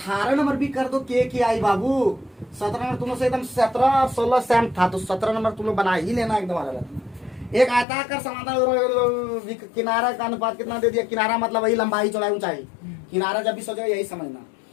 नंबर भी कर दो के आई बाबू। 17 नंबर तुम लोग से एकदम 17 और 16 सेम था, तो 17 नंबर तुम लोग बना ही लेना एकदम अलग। एक आयताकार समांतर किनारा का अनुपात कितना दे दिया, किनारा मतलब वही लंबाई चौड़ाई ऊंचाई, किनारा जब भी सोचो यही समझना।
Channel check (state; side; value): drops out; right; at 7.9 s